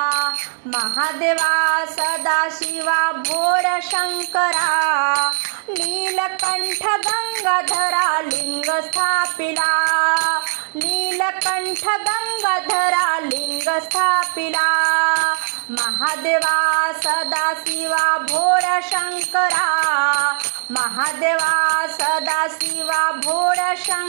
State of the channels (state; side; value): silent; left; 66 dB below the other